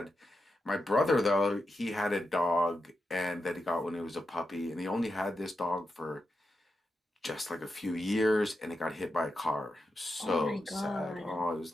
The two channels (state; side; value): normal; both; correlation 0.88